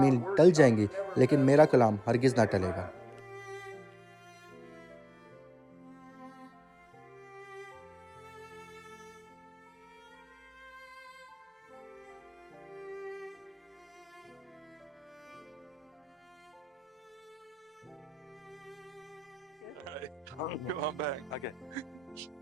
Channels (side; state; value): both; normal; correlation 0.97